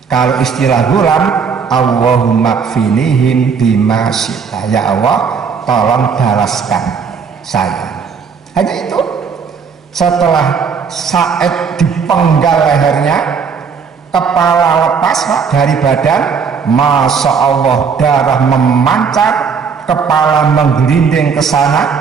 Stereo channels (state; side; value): quieter; left; 6.1 dB